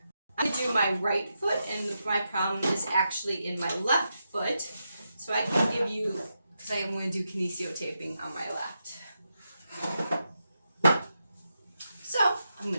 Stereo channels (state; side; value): inverted; both; correlation -0.86